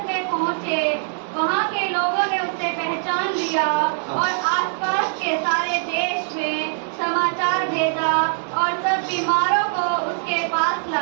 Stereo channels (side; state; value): left; silent; 64 dB below the other